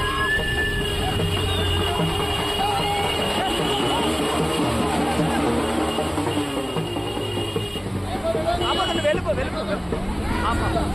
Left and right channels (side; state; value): both; identical; correlation 1.00